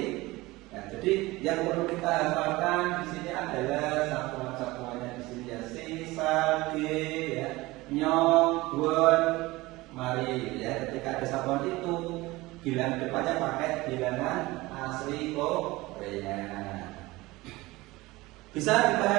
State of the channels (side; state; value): left; quieter; 20.4 dB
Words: Nah, jadi yang perlu kita hafalkan di sini adalah satuan-satuannya di sini ya, si, sa, ge, ya, nyong, buan, mari. Ya, ketika ada satuan itu, bilangan depannya pakai bilangan asli Korea. Bisa